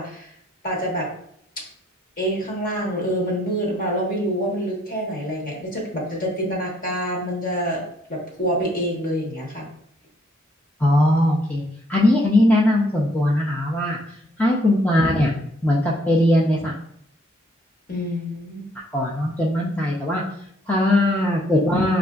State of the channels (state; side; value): normal; both; correlation 0.66